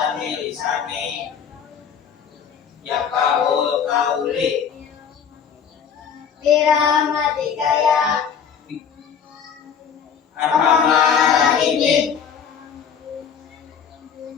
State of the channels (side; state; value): right; quieter; 7.3 dB